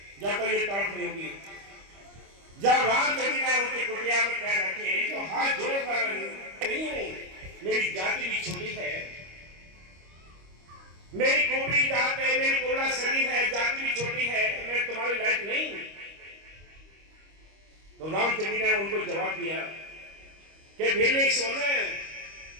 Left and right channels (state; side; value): late; left; 25 ms